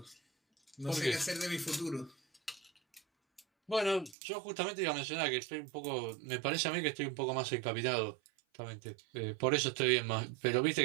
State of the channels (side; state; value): left; drops out; at 4.2 s